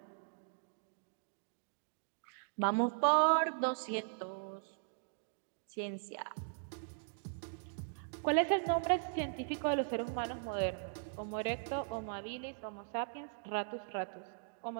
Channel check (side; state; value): left; silent; digital silence